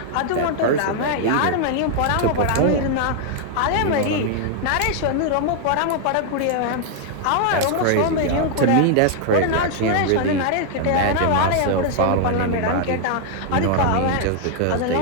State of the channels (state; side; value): different; both; correlation 0.00